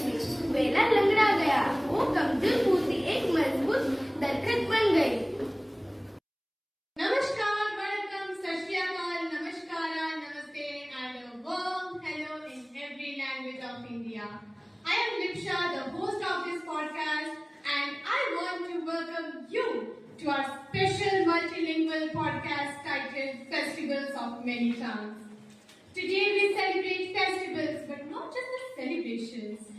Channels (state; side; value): identical; both; correlation 1.00